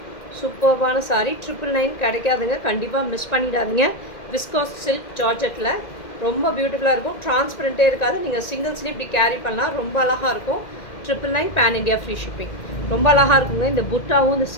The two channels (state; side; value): late; right; 2.1 ms